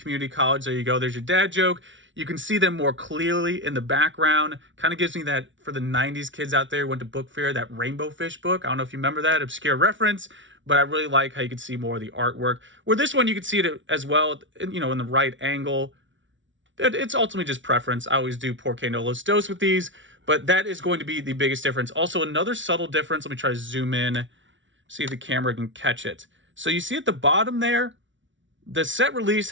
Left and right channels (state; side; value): late; left; 0.55 ms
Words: college. There you go. There's your dad joke. You can see them more clearly in the background. Kind of gives me that, for the 90s kids out there who went to book fair, that Rainbow Fish book. I don't know if you remember that, obscure reference, but I really like how you can see more of the artwork. Where this one, you can see it as well, you know, in the right angle. It's ultimately just preference. I always do Porque no los dos with these, but that is going to be the biggest difference. Also, another subtle difference. Let me try to zoom in, see if the camera can catch it. So you see at the bottom there, the set release